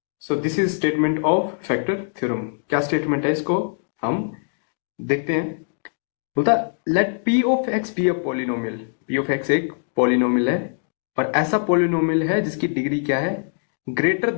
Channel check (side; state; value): right; silent; digital silence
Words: So this is statement of factor theorem. क्या स्टेटमेंट है इसको हम देखते हैं. बोलता let P of x be a polynomial. P of X एक पॉलिनोमियल है और ऐसा पॉलिनोमियल है जिसकी डिग्री क्या है, ग्रेटर